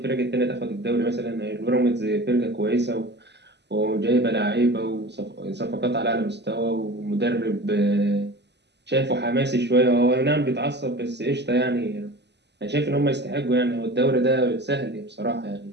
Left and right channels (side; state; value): left; late; 0.50 ms